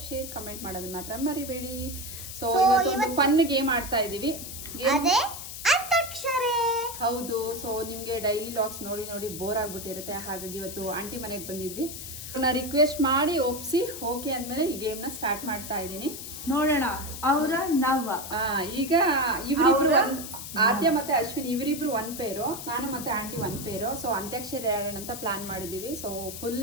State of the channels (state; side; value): noise; left; hiss, 9 dB below the sound